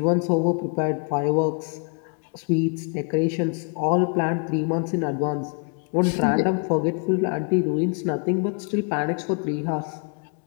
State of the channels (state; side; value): quieter; right; 39.1 dB